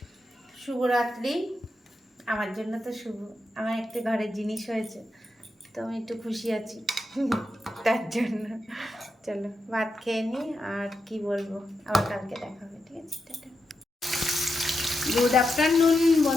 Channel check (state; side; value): normal; both; correlation 0.86